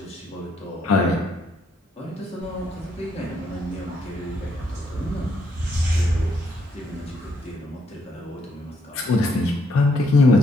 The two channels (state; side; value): normal; both; correlation 0.73